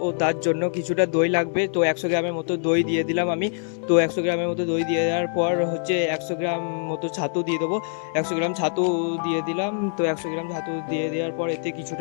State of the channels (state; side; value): silent; right; 62 dB below the other